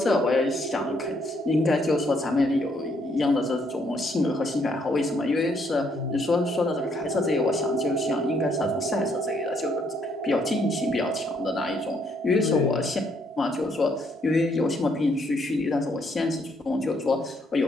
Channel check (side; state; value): both; normal; correlation 0.70